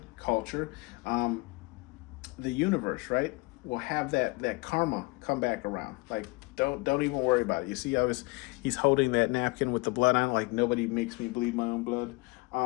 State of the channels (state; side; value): quieter; right; 25.2 dB